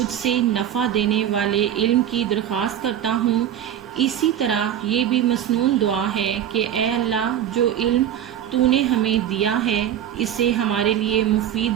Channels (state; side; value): quieter; left; 10.4 dB